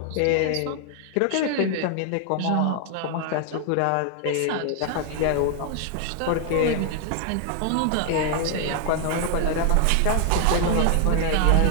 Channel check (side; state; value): both; different; correlation 0.00